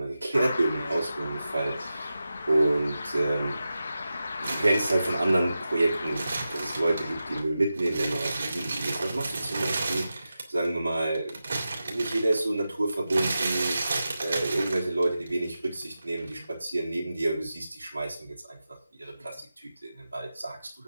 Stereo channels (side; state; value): both; inverted; correlation -0.92